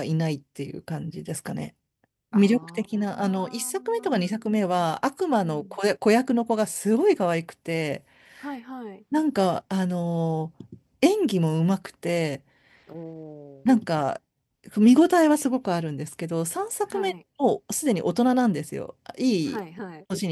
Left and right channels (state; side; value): identical; both; correlation 1.00